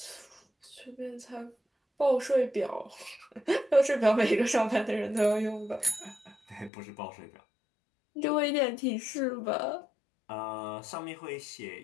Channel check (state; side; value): drops out; right; at 6.7 s